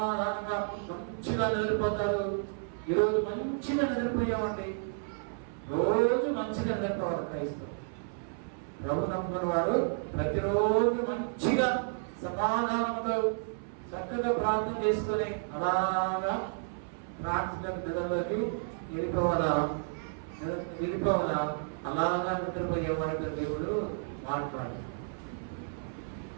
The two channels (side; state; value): left; silent; 57 dB below the other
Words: మంచిగా నిద్రపోతారు. ఈరోజు మంచిగా నిద్రపోయామండి. రోజు మంచిగా నిద్రపోవాలి క్రైస్తవులు. ప్రభు నమ్ముకున్న వాడు ప్రతిరోజు మంచిగా సమాధానంతో చక్కగా ప్రార్థన చేసుకొని అలాగా ప్రార్థన నిద్రలోకి వెళ్ళిపోవాలా. వెళ్ళిపోవాలా, అలాగా నిద్రపోయే వారితో దేవుడు మాట్లాడు.